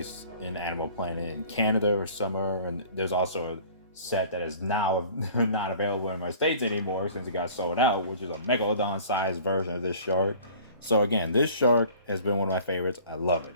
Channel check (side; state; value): both; inverted; correlation -0.48